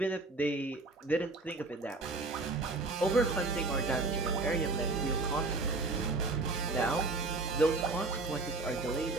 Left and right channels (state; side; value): quieter; left; 3.3 dB